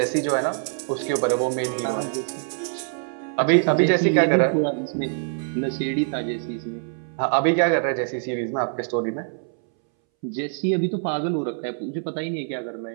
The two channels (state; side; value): silent; left; 62 dB below the other